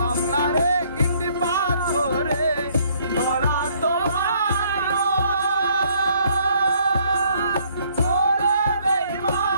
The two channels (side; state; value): both; inverted; correlation -0.64